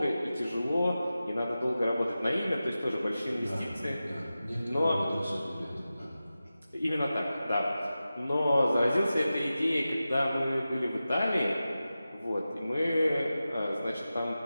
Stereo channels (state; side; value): inverted; both; correlation -0.94